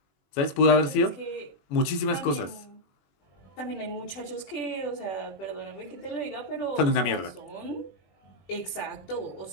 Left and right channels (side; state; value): right; late; 21 ms